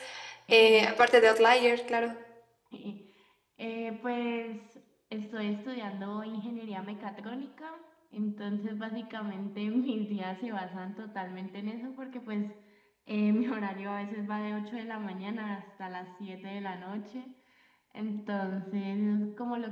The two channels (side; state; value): both; identical; correlation 1.00